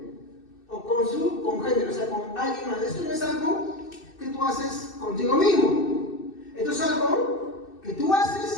o con su congénero, o sea, con alguien más. Esto no es algo que tú haces contigo mismo. Esto es algo que tú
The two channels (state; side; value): late; right; 2.6 ms